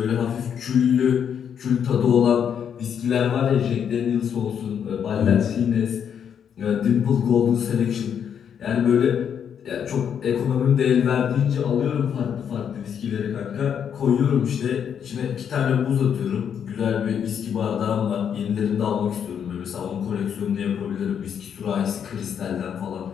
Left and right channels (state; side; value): quieter; right; 8.1 dB